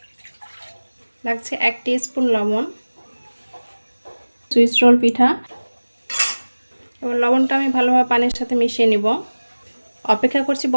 লাগছে 1 টিস্পুন লবণ। সুইস রোল পিঠা, এবার লবণটা আমি ভালোভাবে পানির সাথে মিশিয়ে নিব। অপেক্ষা করছি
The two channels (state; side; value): inverted; both; correlation -1.00